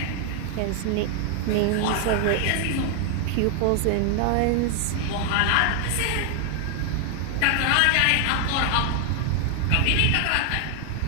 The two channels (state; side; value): different; both; correlation 0.00